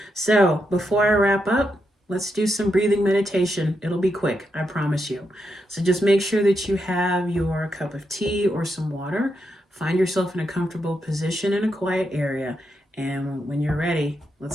So before I wrap up, let's do some breathing meditation. It'll be quick, I promise you. So just make sure that you have your cup of tea or some water. Find yourself in a comfortable position in a quiet area. And when you're ready,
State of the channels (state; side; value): normal; both; correlation 0.83